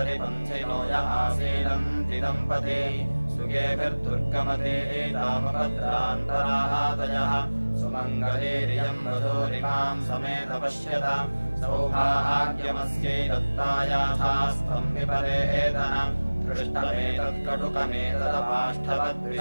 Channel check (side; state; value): both; inverted; correlation -1.00